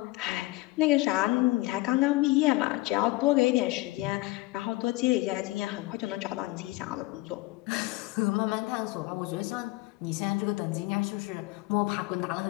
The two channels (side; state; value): right; quieter; 20.8 dB